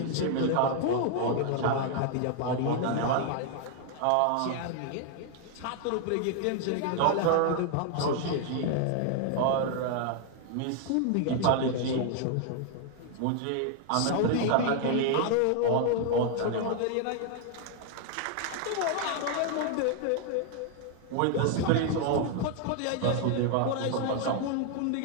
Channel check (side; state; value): both; different; correlation 0.00